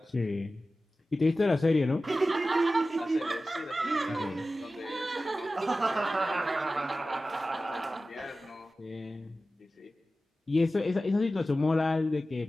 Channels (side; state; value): both; normal; correlation 0.95